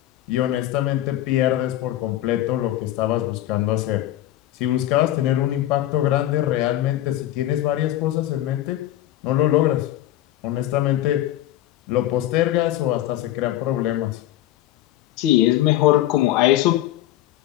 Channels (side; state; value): right; quieter; 13.9 dB